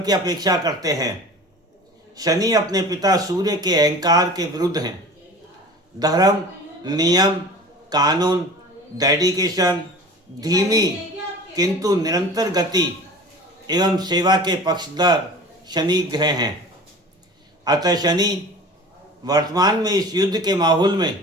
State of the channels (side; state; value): both; normal; correlation 0.39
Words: की अपेक्षा करते हैं। शनि अपने पिता सूर्य के अहंकार के विरुद्ध हैं। धर्म, नियम, कानून, डेडिकेशन, धीमी किंतु निरंतर गति एवं सेवा के पक्षधर शनि ग्रह हैं। अतः शनि वर्तमान में इस युद्ध के माहौल